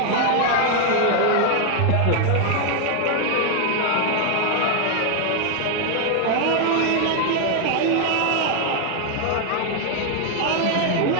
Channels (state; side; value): different; both; correlation 0.01